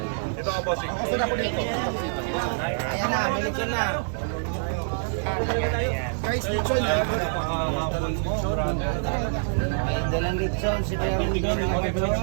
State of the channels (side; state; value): left; silent; digital silence